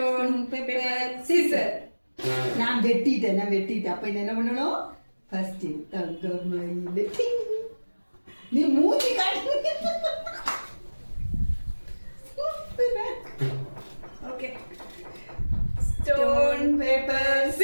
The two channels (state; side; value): inverted; both; correlation -1.00